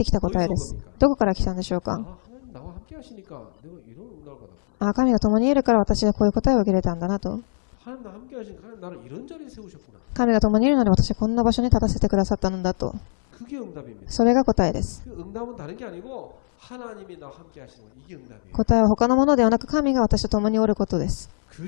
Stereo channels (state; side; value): silent; right; 60 dB below the other